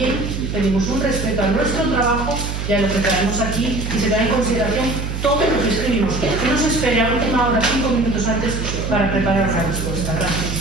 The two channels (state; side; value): noise; right; hum, 4 dB below the sound